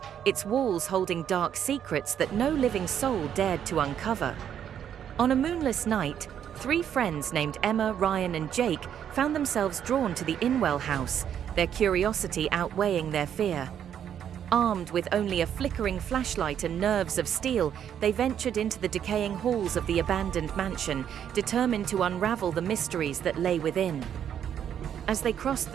its walls holding dark secrets that no living soul dared to uncover. On a moonless night, three friends named Emma, Ryan, and Jake found themselves drawn to the Inwell House, their curiosity outweighing their fear. Armed with only a flickering flashlight and nerves of steel, they ventured into the decaying halls of the abandoned mansion, determined to unravel the mysteries that lay within. As they crossed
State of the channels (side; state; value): left; quieter; 9.2 dB